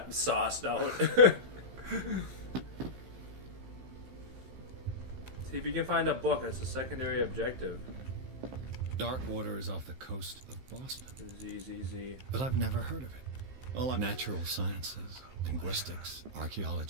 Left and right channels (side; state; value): left; late; 15 ms